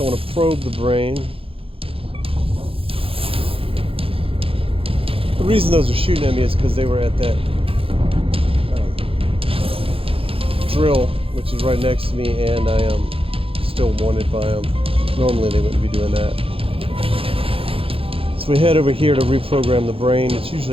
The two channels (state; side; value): late; left; 0.27 ms